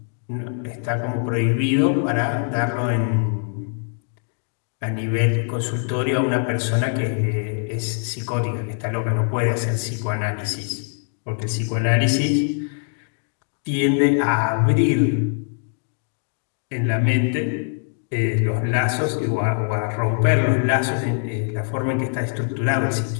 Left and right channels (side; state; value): right; silent; 58 dB below the other